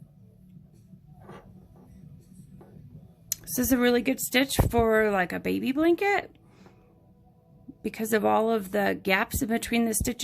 This is a really good stitch for like a baby blanket because of all of the gaps in between the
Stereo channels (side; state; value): both; identical; correlation 1.00